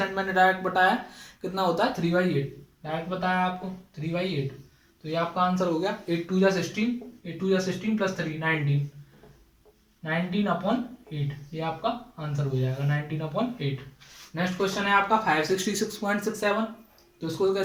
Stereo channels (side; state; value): both; identical; correlation 1.00